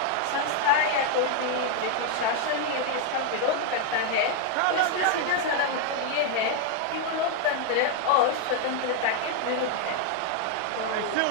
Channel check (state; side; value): different; both; correlation 0.00